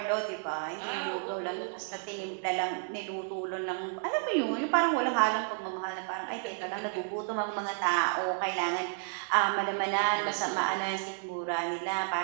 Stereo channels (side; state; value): left; silent; 57 dB below the other